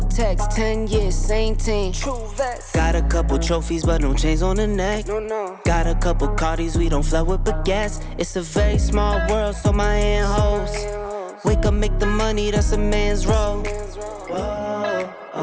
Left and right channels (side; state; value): both; identical; correlation 1.00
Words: text. 10 years, same team. Got a couple trophies, but no chains on the neck. Got a couple Cardis, we don't flood with baguettes. It's a very small world, so my hand holds. Wake up, make the money, that's a man's role. Whoa,